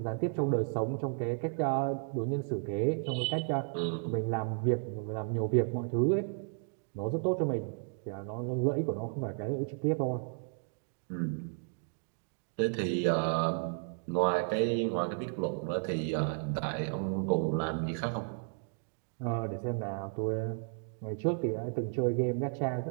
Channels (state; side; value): silent; left; 55 dB below the other